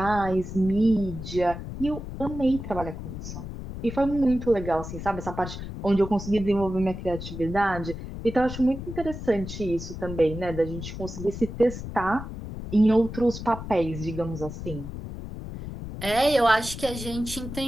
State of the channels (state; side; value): noise; left; rumble, 9 dB below the sound